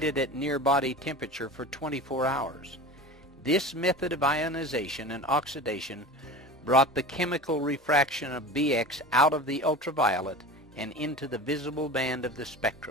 at near body temperature for 24 hours. This method of ionization and oxidation brought the chemical refraction of BX out of the ultraviolet and into the visible band of the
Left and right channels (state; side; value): normal; both; correlation 0.33